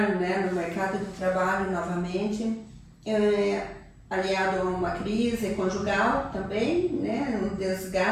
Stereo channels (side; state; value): both; identical; correlation 1.00